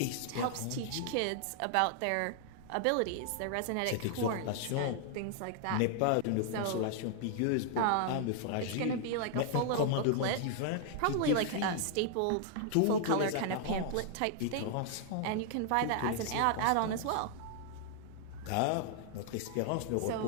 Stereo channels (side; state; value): both; different; correlation 0.00